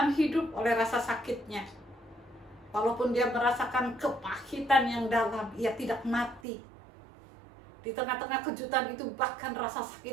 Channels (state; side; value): drops out; left; at 6.4 s